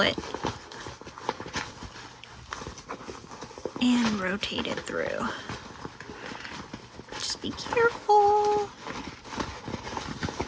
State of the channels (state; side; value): identical; both; correlation 1.00